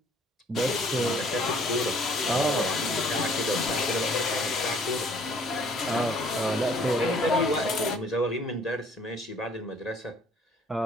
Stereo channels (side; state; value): both; normal; correlation 0.58